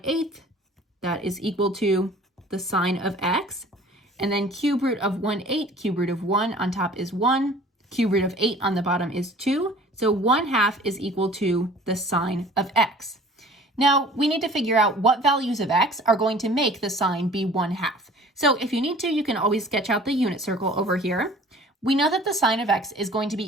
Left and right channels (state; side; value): normal; both; correlation 0.48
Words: that is equal to the sine of x. And then cube root of 1/8, cube root of 1 on top is 1. Cube root of 8 on the bottom is 2. So 1/2 is equal to the sine of x. Now we need to figure out what values of x are going to make the sine be 1/2. So if you need to, you can always sketch out the unit circle over here. We know that the sine of x is going to